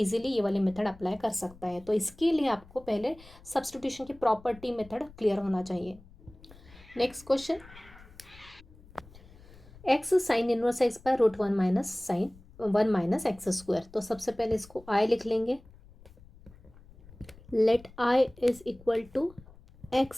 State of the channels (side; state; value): left; noise; rumble, 22 dB below the sound